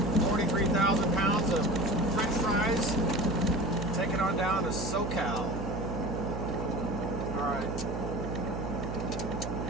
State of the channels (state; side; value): noise; right; hum, 5 dB below the sound